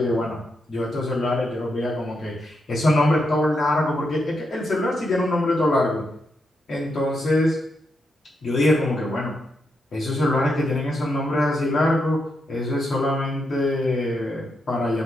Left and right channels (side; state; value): both; normal; correlation 0.82